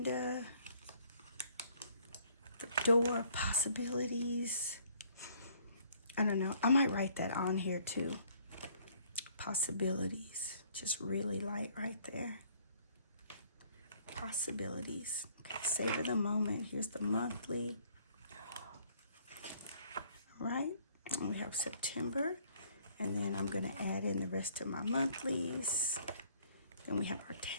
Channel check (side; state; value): both; inverted; correlation -0.61